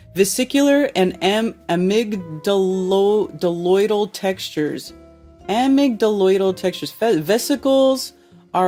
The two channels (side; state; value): both; identical; correlation 1.00